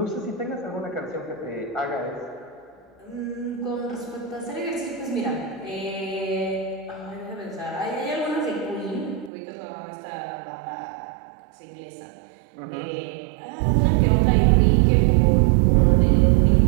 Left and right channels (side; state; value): left; drops out; at 9.3 s